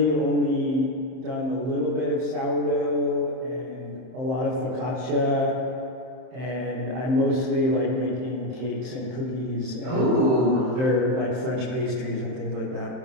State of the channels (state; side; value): late; left; 31 ms